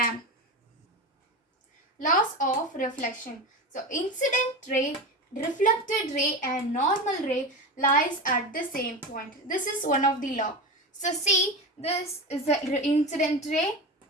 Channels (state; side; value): normal; both; correlation 0.23